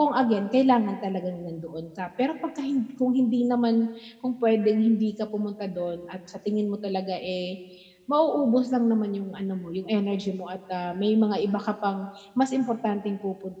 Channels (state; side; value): identical; both; correlation 1.00